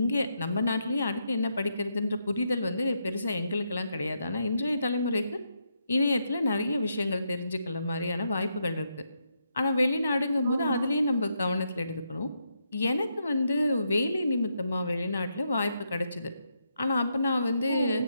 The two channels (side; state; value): both; inverted; correlation -0.80